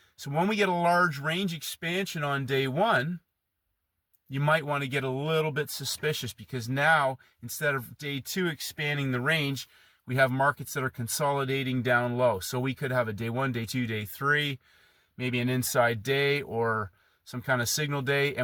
So when we get a large range expansion on day one, you might want to get a little bit suspicious because now instead of day two expanding the range, we have markets that are consolidating down low. So we could have a day one, day two, day three, maybe an inside day or some kind of signal day,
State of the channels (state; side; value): identical; both; correlation 1.00